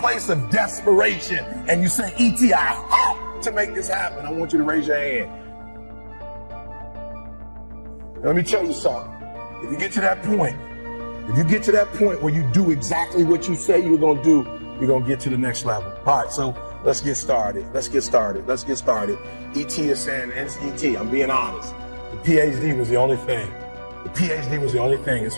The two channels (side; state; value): both; inverted; correlation -1.00